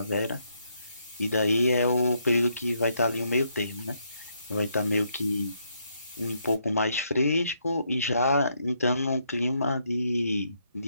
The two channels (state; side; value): inverted; both; correlation -0.76